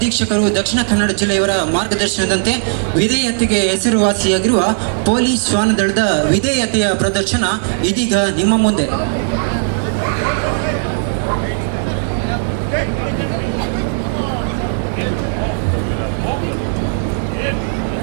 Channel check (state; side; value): silent; left; 69 dB below the other